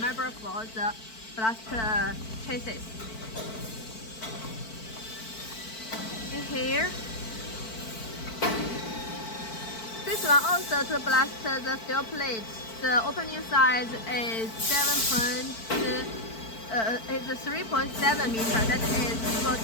for the blast chassis. In here, this one also to blast the steel plate. The opening size is 3.7 meter. That is able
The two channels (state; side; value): late; right; 4.5 ms